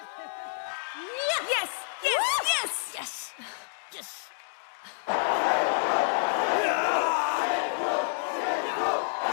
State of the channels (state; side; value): silent; right; digital silence